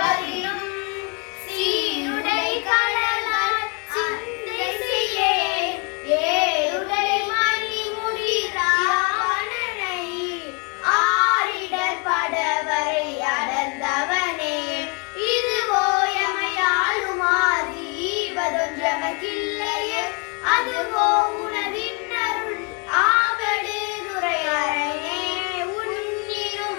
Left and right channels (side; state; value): right; quieter; 31.1 dB